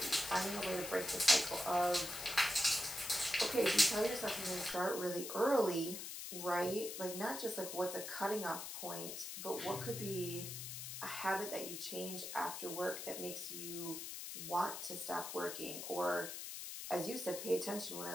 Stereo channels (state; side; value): noise; left; hiss, 7 dB below the sound